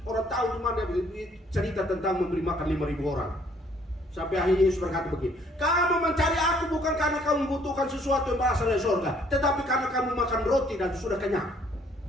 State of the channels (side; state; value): both; normal; correlation 0.63